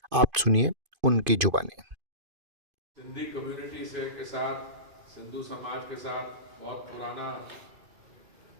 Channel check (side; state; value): left; late; 2.5 ms